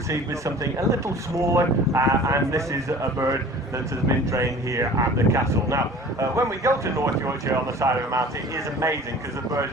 with something a little smaller, and this is a bird that has been trained here at the castle. Now, when we go to North Yorkshire on the side of the mountain, it is amazing because the birds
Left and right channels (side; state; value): both; normal; correlation 0.44